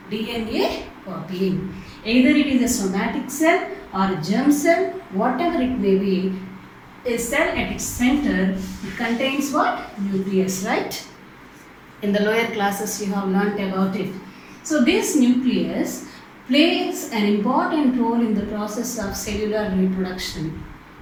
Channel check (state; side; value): identical; both; correlation 1.00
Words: DNA copying. Either it is a somatic cell or a germ cell, whatever it may be, a cell at its center contains what? Nucleus, right? In the lower classes you have learnt about it. So this nucleus plays an important role in the process of cellular reproduction.